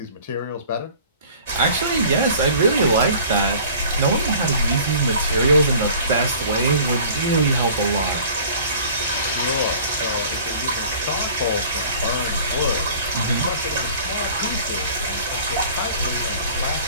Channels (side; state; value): both; inverted; correlation -0.47